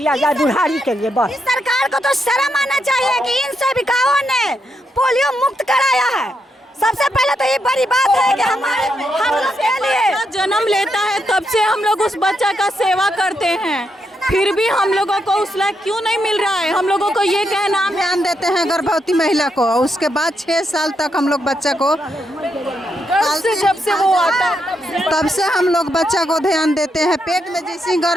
जाए बुढ़ारी के लिए बस। सरकार को तो शर्म आना चाहिए कि इन सेविकाओं ने पोलियो मुक्त कराया है। सबसे पहले तो ये बड़ी बात है कि हम लोग के लिए जन्म लेता है तब से हम लोग उस बच्चा का सेवा करते हैं, फिर भी हम लोगों को उस लायक क्यों नहीं मिल रहा है? हम लोगों को ये कहना, ध्यान देते हैं गर्भवती महिला को, उसके बाद 6 साल तक हम लोग बच्चा को, जब से वो आता है तब से हम लोग बच्चा को ध्यान देते हैं। पेट में जैसे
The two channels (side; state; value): both; normal; correlation 0.81